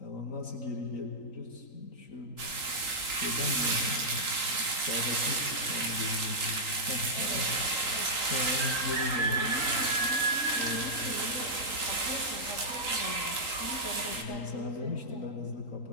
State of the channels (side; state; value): right; late; 3.8 ms